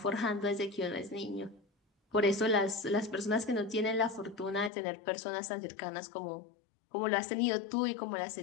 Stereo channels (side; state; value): right; drops out; at 4.7 s